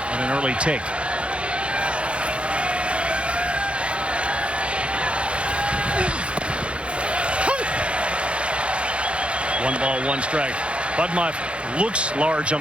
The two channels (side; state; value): left; late; 0.059 ms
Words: on an early take. One ball, 1 strike. Budmeyev looks large on